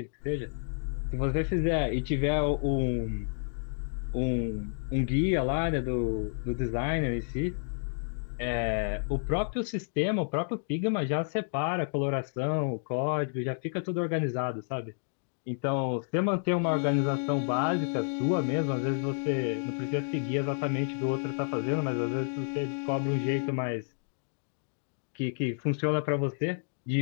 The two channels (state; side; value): silent; right; digital silence